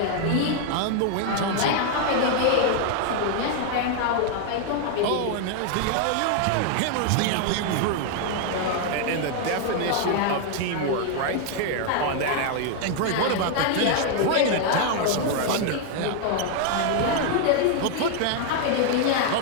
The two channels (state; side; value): different; both; correlation 0.00